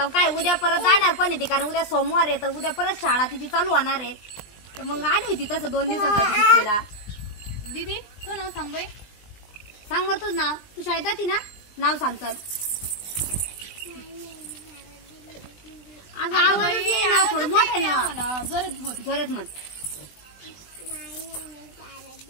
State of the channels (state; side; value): late; right; 20 ms